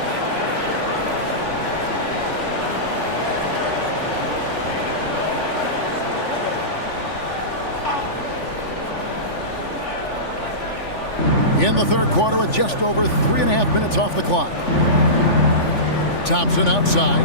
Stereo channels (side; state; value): right; late; 3.4 ms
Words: In the 3rd quarter with just over 3.5 minutes off the clock. Thompson outside.